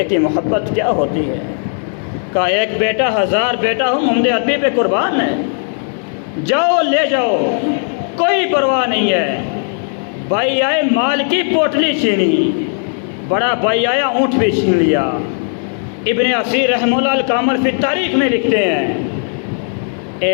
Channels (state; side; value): silent; right; 57 dB below the other